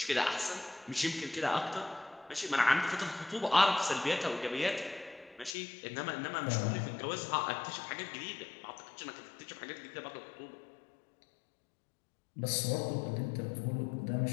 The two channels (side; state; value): right; drops out; at 5.6 s